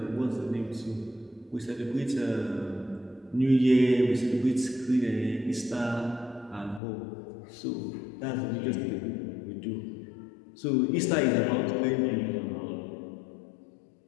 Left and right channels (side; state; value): right; drops out; at 6.8 s